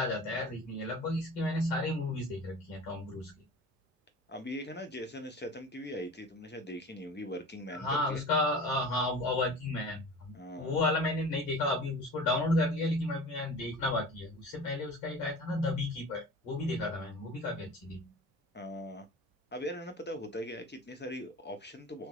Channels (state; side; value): normal; both; correlation 0.38